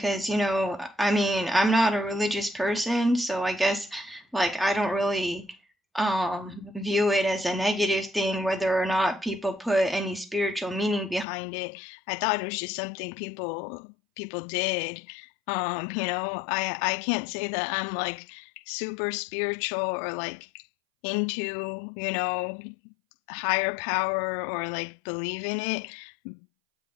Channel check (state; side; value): drops out; right; at 11.2 s